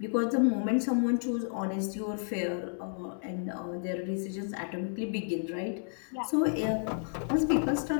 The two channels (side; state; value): right; silent; digital silence